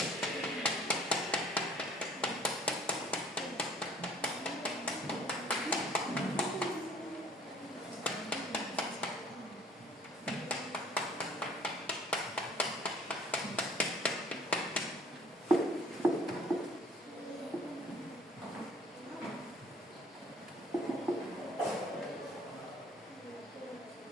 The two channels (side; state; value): both; normal; correlation 0.54